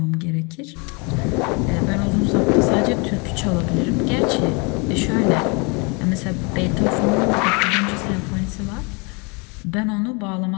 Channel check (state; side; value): quieter; right; 31.1 dB